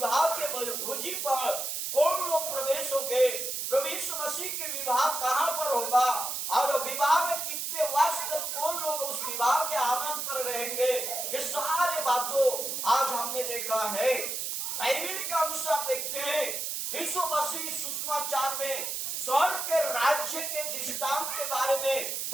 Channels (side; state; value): right; noise; hiss, 3 dB below the sound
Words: के भोजी पर कौन लोग प्रवेश होंगे, प्रभु यीशु मसीह के विवाह कहाँ पर होगा, और विवाह में कितने वर्ष तक कौन लोग उस विवाह के आनंद पर रहेंगे, ये सारे बातों आज हमने देखा है। बाइबल के अनुसार देखते हैं, यीशु मसीह सुसमाचार में स्वर्ग के राज्य के दृष्टांत के बारे में